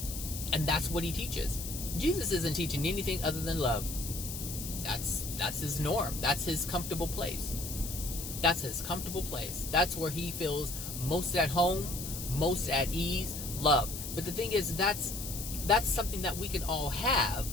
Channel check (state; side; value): noise; left; hiss, 7 dB below the sound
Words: And that's what he teaches. Jesus isn't teaching anything other than love. That's his norm. That's his comfortable place. That's his comfortable place. That's where he feels most at home, most at ease, love. But the thing is, that's something that we can all have,